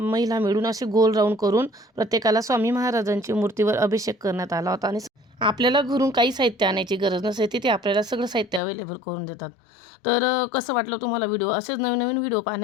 मिळून असे गोल राऊंड करून प्रत्येकाला स्वामी महाराजांची मूर्तीवर अभिषेक करण्यात आला होता आणि आपल्याला घरून काही साहित्य आणायची गरज नसते, तिथे आपल्याला सगळं साहित्य अवेलेबल करून देतात। तर कसं वाटलं तुम्हाला व्हिडिओ? असेच नवीन व्हिडिओ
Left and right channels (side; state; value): right; drops out; at 8.6 s